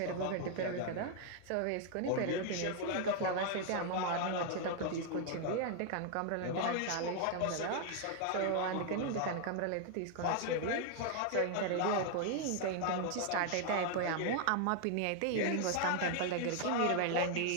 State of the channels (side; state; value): both; different; correlation 0.00